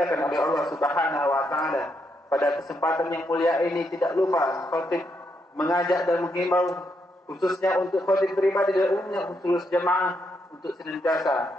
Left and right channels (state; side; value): normal; both; correlation 0.79